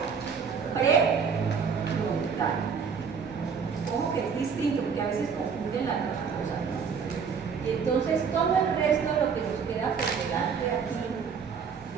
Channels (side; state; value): left; quieter; 6.2 dB